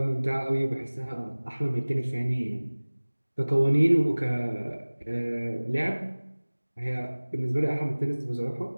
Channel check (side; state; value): both; inverted; correlation -1.00